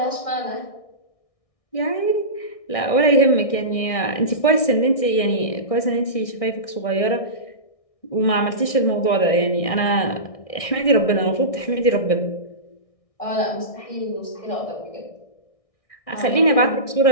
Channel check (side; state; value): right; late; 1.6 ms